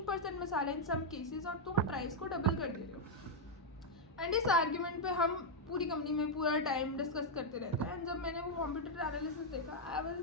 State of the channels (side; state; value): both; normal; correlation -0.02